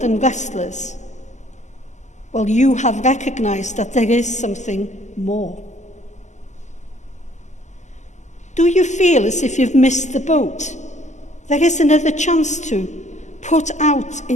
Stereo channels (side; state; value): right; late; 0.34 ms